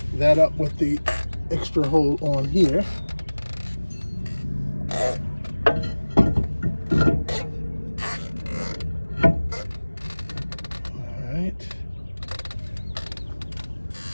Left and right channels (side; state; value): both; inverted; correlation -1.00